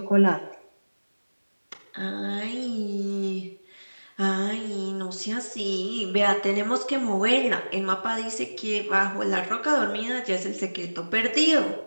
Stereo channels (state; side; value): inverted; both; correlation -1.00